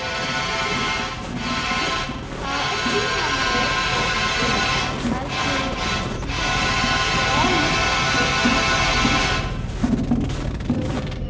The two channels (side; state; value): both; identical; correlation 1.00